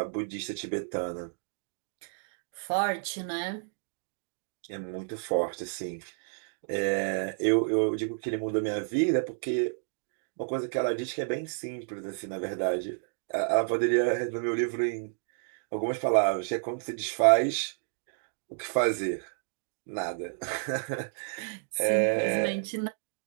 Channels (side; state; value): left; silent; digital silence